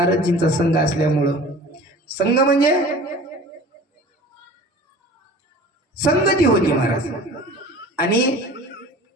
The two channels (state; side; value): normal; both; correlation 0.42